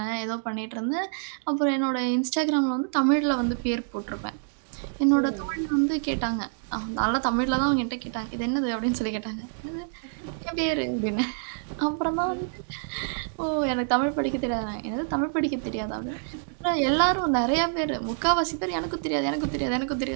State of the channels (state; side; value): silent; left; digital silence